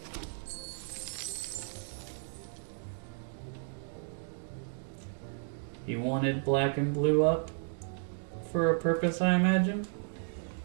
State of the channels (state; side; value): silent; left; digital silence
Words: He wanted black and blue up for a purpose, I imagine.